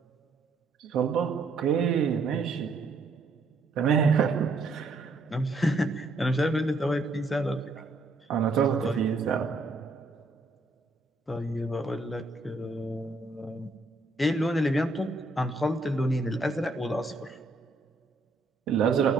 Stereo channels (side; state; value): left; quieter; 3.3 dB